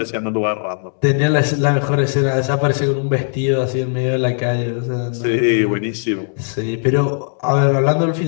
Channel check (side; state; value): right; silent; digital silence